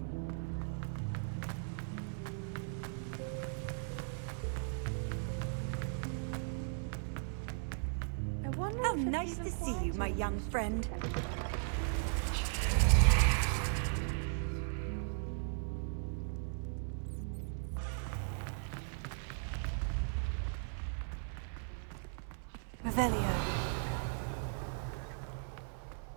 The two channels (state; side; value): silent; left; 53 dB below the other